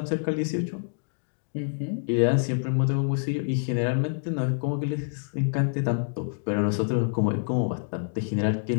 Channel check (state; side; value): silent; right; digital silence